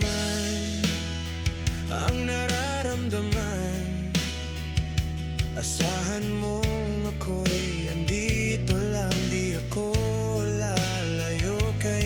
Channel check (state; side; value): identical; both; correlation 1.00